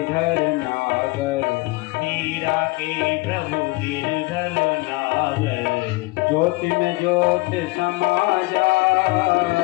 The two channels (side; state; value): right; quieter; 23.3 dB